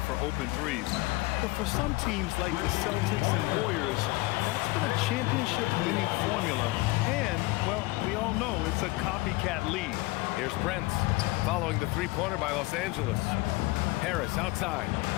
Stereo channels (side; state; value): right; quieter; 21.5 dB